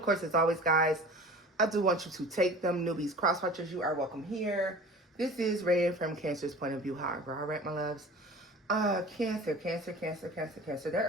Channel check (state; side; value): normal; both; correlation 0.41